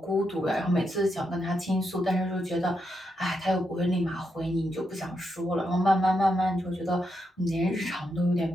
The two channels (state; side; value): normal; both; correlation 0.83